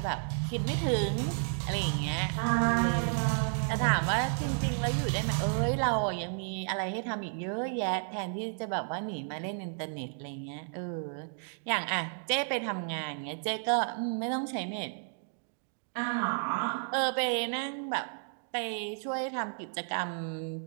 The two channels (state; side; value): silent; left; digital silence